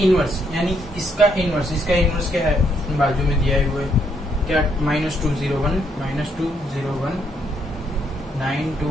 इनवर्स यानी इसका इनवर्स क्या है, बाजू में दिया हुआ है क्या, -2 0 1 -2 0 1 9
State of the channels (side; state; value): both; normal; correlation 0.73